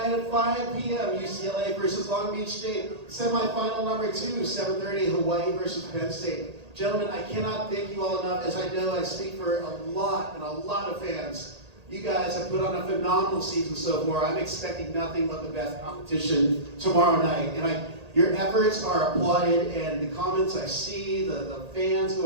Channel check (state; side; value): late; left; 1.8 ms